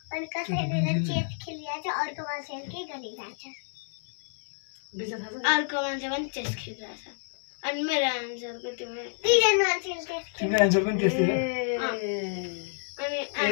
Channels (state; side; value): silent; right; 58 dB below the other